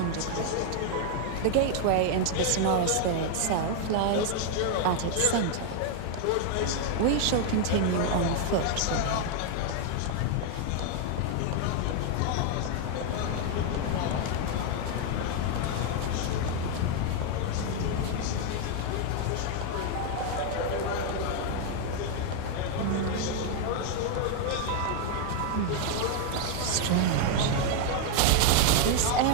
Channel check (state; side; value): different; both; correlation 0.00